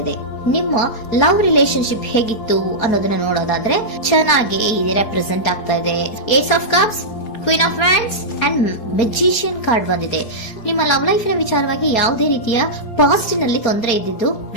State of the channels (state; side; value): late; right; 4.7 ms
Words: ಇದೆ. ನಿಮ್ಮ ಲವ್ ರಿಲೇಶನ್ಶಿಪ್ ಹೇಗಿತ್ತು ಅನ್ನೋದನ್ನ ನೋಡೋದಾದ್ರೆ ಚೆನ್ನಾಗಿ ರೆಪ್ರೆಸೆಂಟ್ ಆಗ್ತಾ ಇದೆ. Ace of cups, queen of wands and magician card ಬಂದಿದೆ. ನಿಮ್ಮ ಲವ್ ಲೈಫಿನ ವಿಚಾರವಾಗಿ ಯಾವುದೇ ರೀತಿಯ ಪಾಸಿಟಿವ್ ನಲ್ಲಿ ತೊಂದರೆ ಇದ್ದಿದ್ದು